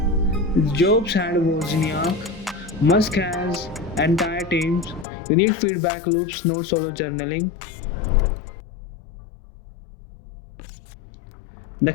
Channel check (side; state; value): right; drops out; at 5.1 s